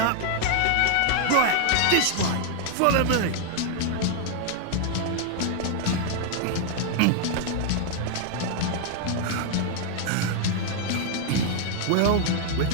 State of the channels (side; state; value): both; different; correlation 0.00